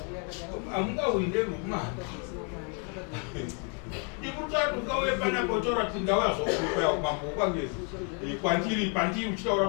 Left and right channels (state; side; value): quieter; right; 39.5 dB